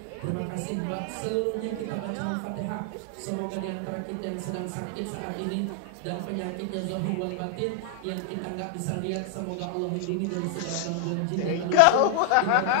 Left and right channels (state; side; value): different; both; correlation 0.00